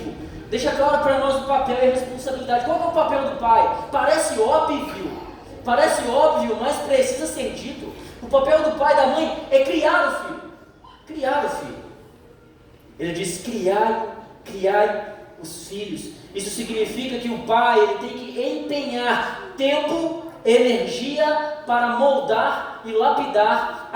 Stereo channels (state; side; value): identical; both; correlation 1.00